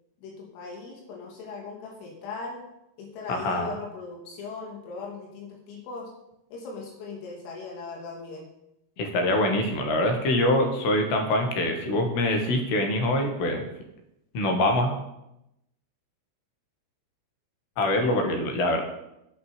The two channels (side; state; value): right; late; 16 ms